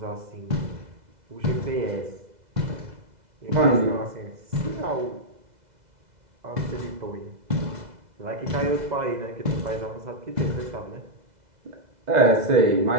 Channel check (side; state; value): left; late; 2.0 ms